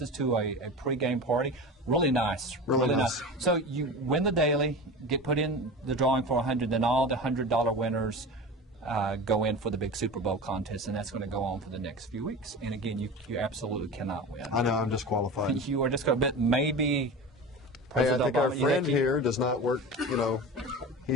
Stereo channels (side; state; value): both; normal; correlation 0.30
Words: to a pre-game party. Really nice. Really nice. So you win the daily, get put in the drawing for 100, then all the $100 winners go in for the big Super Bowl contest, and that's going to go on for the next few weeks. And again, you absolutely cannot win. I know, I'm disqualified. You are just going to bet maybe. Hey, I President think our Obama, you friend think he- here does not work, you know,